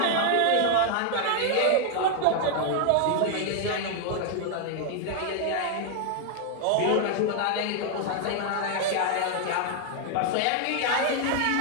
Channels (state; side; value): different; both; correlation 0.00